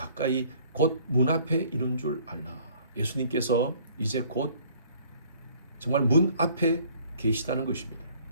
곧 문 앞에 이른 줄 알라. 예수님께서 이제 곧 정말 문 앞에 계시다는 것입니다.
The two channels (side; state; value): both; inverted; correlation -0.57